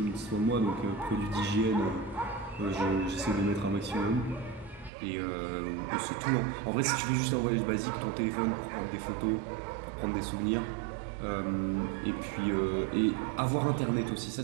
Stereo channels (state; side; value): drops out; left; at 4.9 s